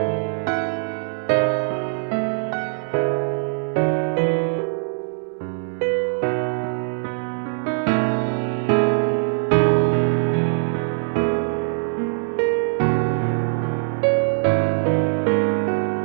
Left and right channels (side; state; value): left; silent; 64 dB below the other